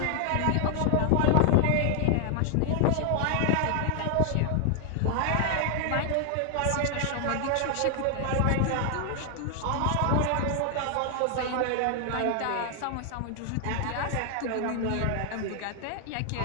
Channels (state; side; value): different; both; correlation 0.00